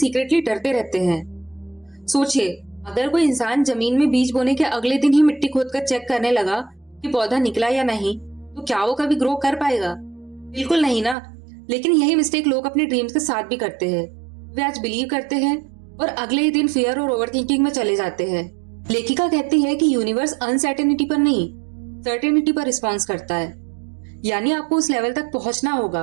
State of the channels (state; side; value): drops out; left; at 11.2 s